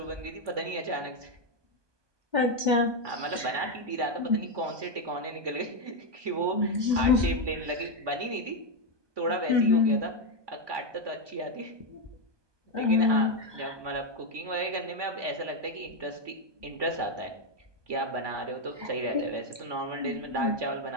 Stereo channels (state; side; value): late; left; 1.2 ms